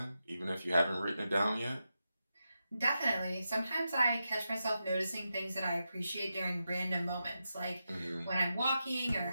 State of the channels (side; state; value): both; inverted; correlation -0.89